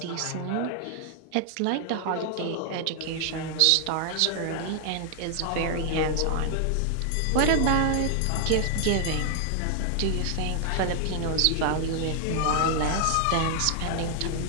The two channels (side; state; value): both; different; correlation 0.00